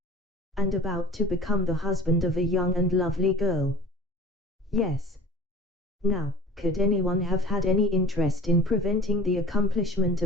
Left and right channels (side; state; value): both; normal; correlation 0.43